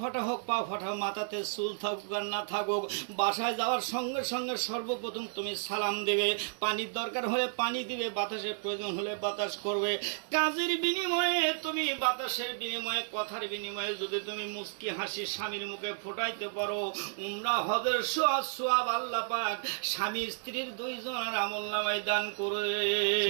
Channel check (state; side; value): silent; left; 56 dB below the other